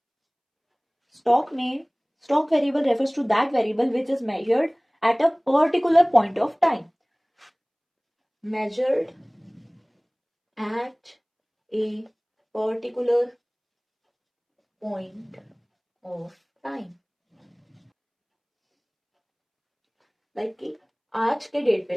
स्टॉक में, stock variable refers to that variable which is measured at a particular point of time, measured at a particular point of time. Like कि आज के डेट पे,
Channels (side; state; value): both; identical; correlation 1.00